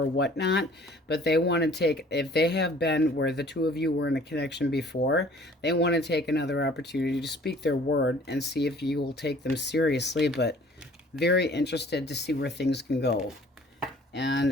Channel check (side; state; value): both; normal; correlation 0.53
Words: or whatnot, but they want to take, if they have been where the two of you were in a connection before, they want to take another opportunity to speak their word and see if you will take them seriously, but very interested to see where things can go.